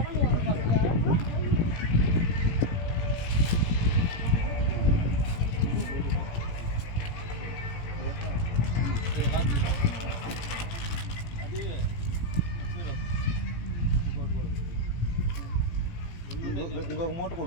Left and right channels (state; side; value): late; right; 18 ms